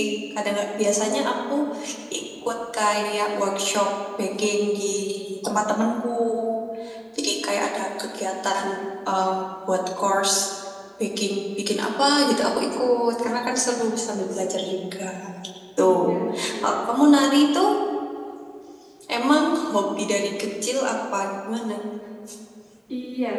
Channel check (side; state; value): both; identical; correlation 1.00